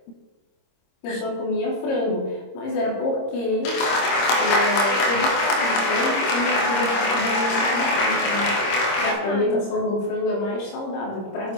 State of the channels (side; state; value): right; late; 26 ms